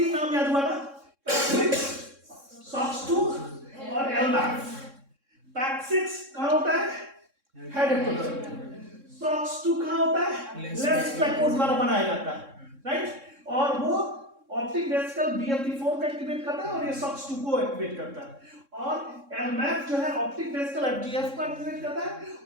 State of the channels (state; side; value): late; left; 3.6 ms